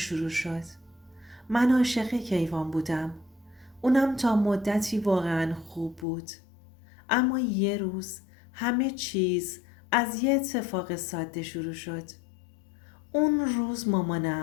شد. من عاشق کیوان بودم. اونم تا مدتی واقعا خوب بود. اما یه روز همه چیز از یه اتفاق ساده شروع شد. اون روز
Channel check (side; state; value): right; drops out; at 6.1 s